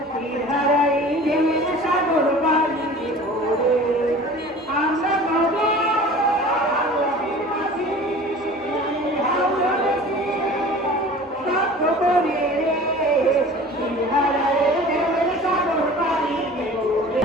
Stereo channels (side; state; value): both; normal; correlation 0.42